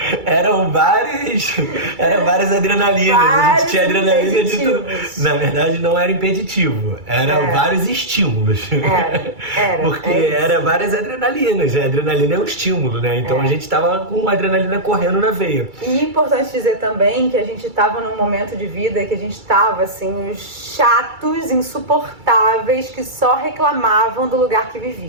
eram várias adrenalinas. A gente tinha adrenalina de tudo. Na verdade, não era impeditivo, eram vários estímulos. Porque era várias adrenalinas. A adrenalina é um estímulo, né? Então a gente tava com adrenalina correndo na veia. E é importante dizer também que a gente tava num momento de vida que a gente tava, assim, os chatos, insuportáveis, que só reclamavam do lugar que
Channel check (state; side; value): late; left; 2.3 ms